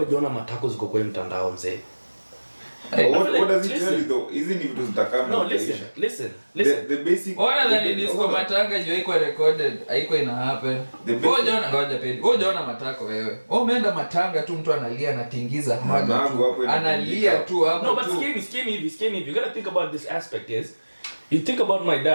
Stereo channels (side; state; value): both; inverted; correlation -1.00